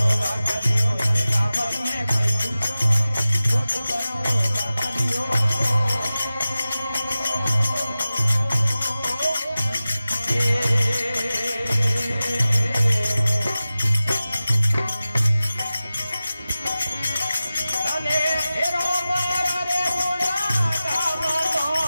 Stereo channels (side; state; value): both; inverted; correlation -0.95